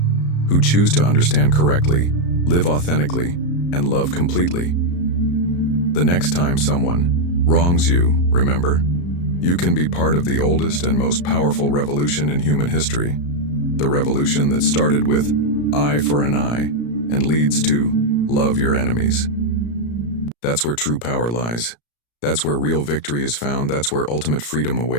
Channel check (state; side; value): late; right; 34 ms